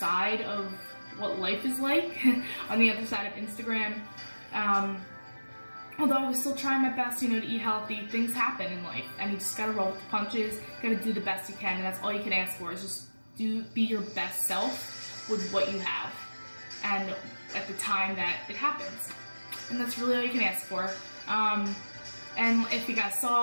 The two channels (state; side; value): inverted; both; correlation -1.00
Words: of what life is like on the other side of Instagram. Although I was still trying my best, you know, to eat healthy, things happen in life, and you just gotta roll with the punches, gotta do the best you can, and that's all you can ask for, is just be your best self with what you have, and at the time that it happens. And that's really all you can ask for. And if you guys